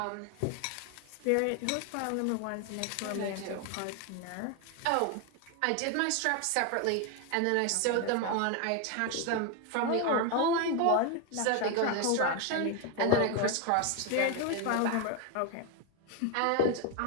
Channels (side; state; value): both; different; correlation 0.01